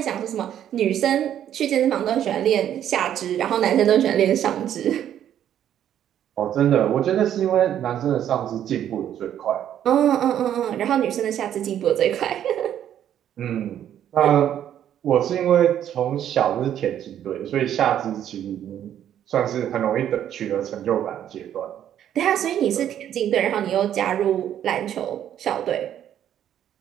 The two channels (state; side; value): quieter; left; 10.4 dB